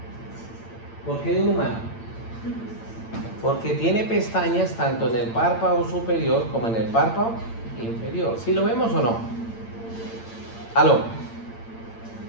¿Por qué de un humano? Porque tiene pestañas tanto en el párpado superior como en el párpado inferior. ¿Sí lo vemos o no? Aló.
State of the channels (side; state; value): right; late; 8.8 ms